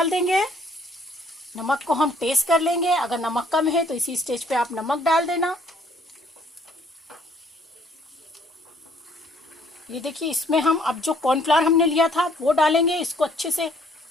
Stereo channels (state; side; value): normal; both; correlation 0.62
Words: देंगे। नमक को हम टेस्ट कर लेंगे। अगर नमक कम है तो इसी स्टेज पे आप नमक डाल देना। ये देखिए, इसमें हम अब जो कॉर्नफ्लावर हमने लिया था वो डालेंगे। इसको अच्छे से